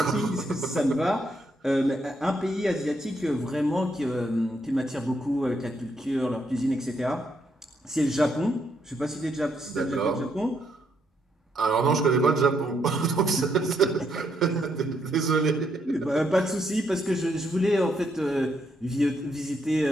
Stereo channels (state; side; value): normal; both; correlation 0.76